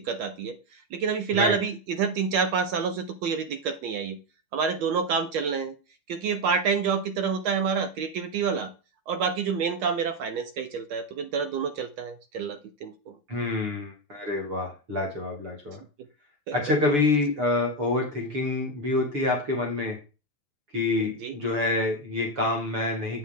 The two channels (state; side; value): late; left; 6.8 ms